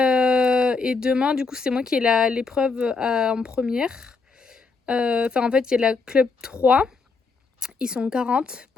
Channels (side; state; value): right; quieter; 4.5 dB